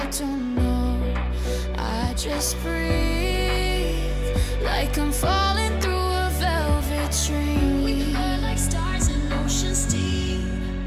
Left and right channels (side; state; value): both; identical; correlation 1.00